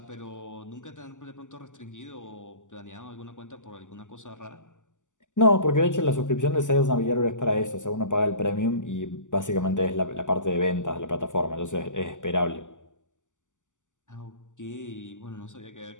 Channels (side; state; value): right; late; 0.86 ms